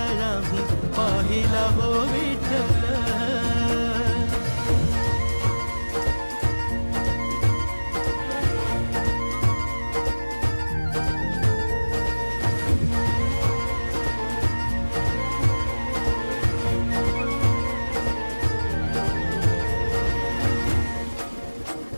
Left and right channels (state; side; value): inverted; both; correlation -1.00